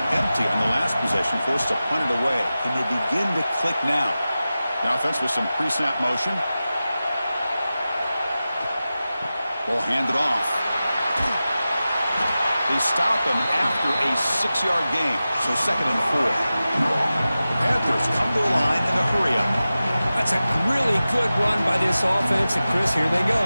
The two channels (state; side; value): inverted; both; correlation -0.95